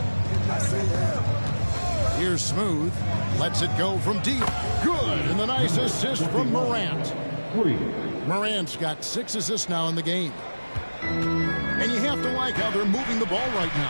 Here's Smooth. Lets it go from deep. Good. And the nice assist from Morant. Morant's got 6 assists now in the game. And you have to like how they're moving the ball right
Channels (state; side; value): inverted; both; correlation -1.00